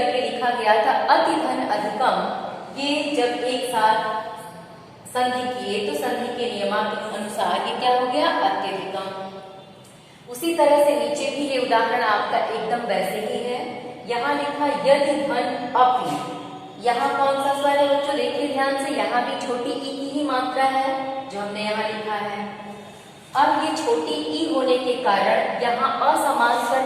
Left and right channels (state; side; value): identical; both; correlation 1.00